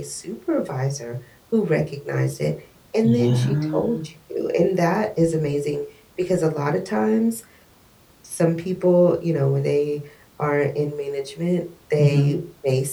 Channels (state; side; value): identical; both; correlation 1.00